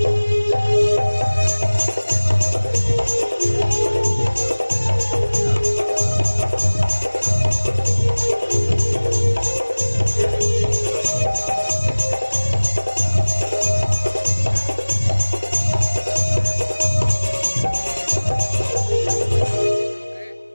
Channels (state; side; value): inverted; both; correlation -1.00